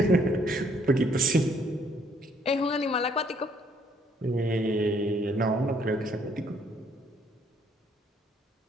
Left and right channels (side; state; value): both; normal; correlation 0.66